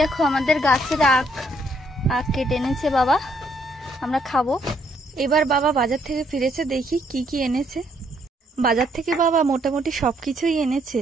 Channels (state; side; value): normal; both; correlation 0.70